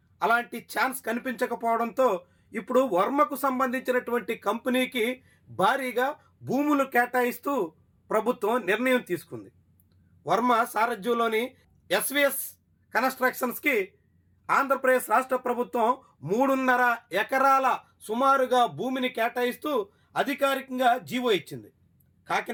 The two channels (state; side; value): identical; both; correlation 1.00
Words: అలాంటి ఛాన్స్ కనిపించకపోవడంతో ఇప్పుడు వర్మకు సంబంధించినటువంటి కంపెనీకి భారీగా భూములు కేటాయిస్తూ ప్రభుత్వం నిర్ణయం తీసుకుంది. వర్మ సారథ్యంలోని ఎస్విఎస్ కన్స్ట్రక్షన్స్కి ఆంధ్రప్రదేశ్ రాష్ట్ర ప్రభుత్వం 3.5 ఎకరాల సుమారుగా భూమిని కేటాయిస్తూ అధికారికంగా జీవో ఇచ్చింది.